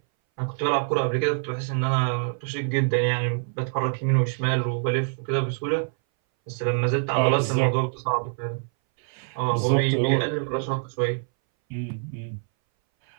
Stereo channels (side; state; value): left; silent; 60 dB below the other